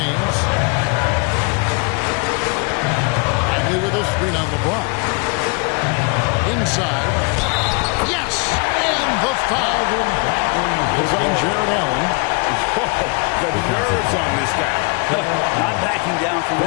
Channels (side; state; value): right; quieter; 32.2 dB